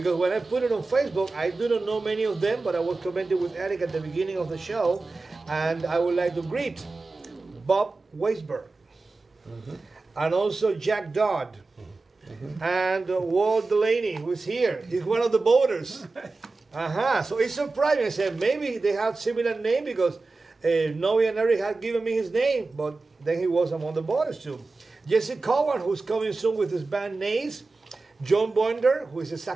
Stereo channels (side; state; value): left; quieter; 3.6 dB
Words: when I put it on Facebook, I do not know many of them, but I was commenting with Eric at the beginning of the show, and I would like to greet Bob Weisberg, and also Jack Dodd, and Walt Delaney, who's here. He's one of the voters. So it's surprising. I said maybe they have similar name because Noe and Eric had given me his name, but then he was among the voters too. Jesse Cowan, who's coming soon with his band Nays. John Boinder, who is a